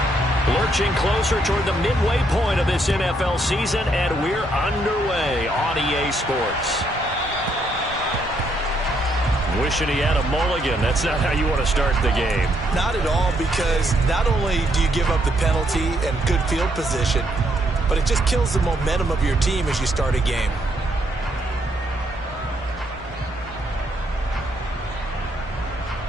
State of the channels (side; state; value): both; normal; correlation 0.74